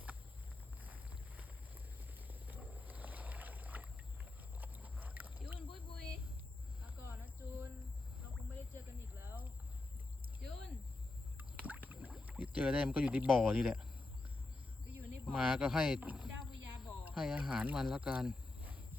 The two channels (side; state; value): right; quieter; 3.0 dB